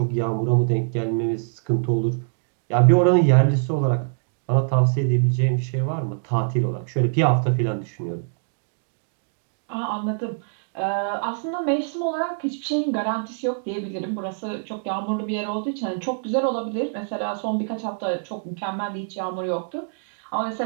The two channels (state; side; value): silent; left; digital silence